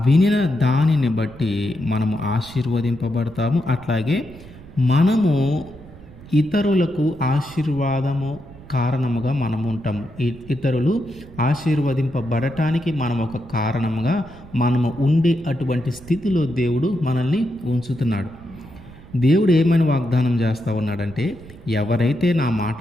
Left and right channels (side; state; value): right; noise; rumble, 19 dB below the sound